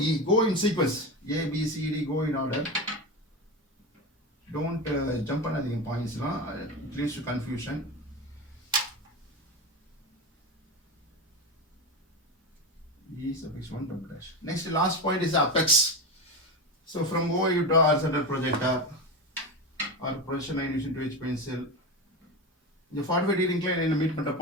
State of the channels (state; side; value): normal; both; correlation 0.20